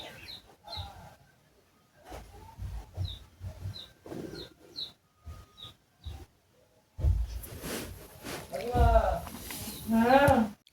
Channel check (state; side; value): identical; both; correlation 1.00